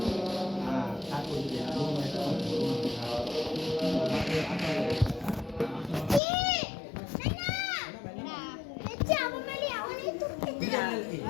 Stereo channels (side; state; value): right; drops out; at 6.2 s